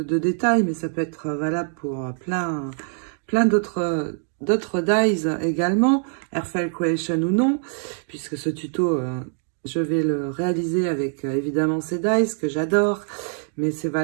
détails, mais ça peut être valable pour plein d'autres dies également, Airfile Creation ou non, puisque ce tuto, je vais le réaliser avec évidemment ces dies que j'adore, mais c'est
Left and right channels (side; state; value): left; silent; 59 dB below the other